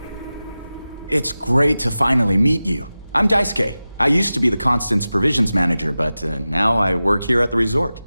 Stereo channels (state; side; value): inverted; both; correlation -0.95